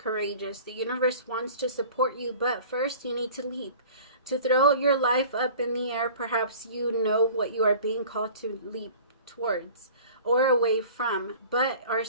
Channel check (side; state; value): both; inverted; correlation -0.44